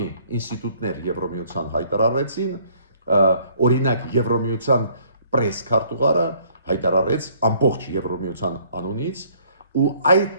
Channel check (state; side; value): inverted; both; correlation -0.61